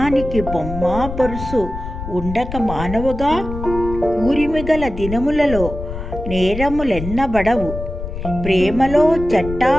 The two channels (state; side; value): noise; left; rumble, 8 dB below the sound